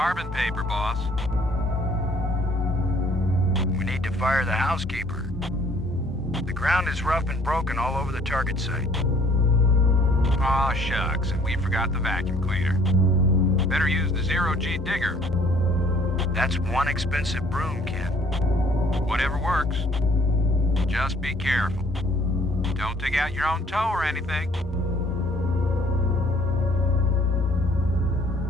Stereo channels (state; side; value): normal; both; correlation 0.59